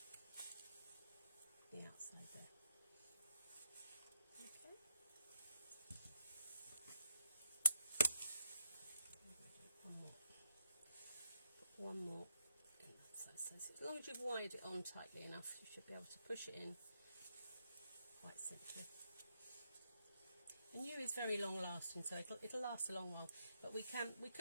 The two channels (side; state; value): both; inverted; correlation -0.81